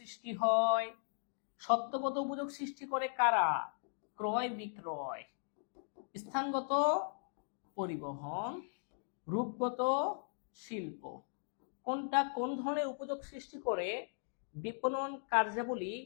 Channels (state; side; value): silent; right; digital silence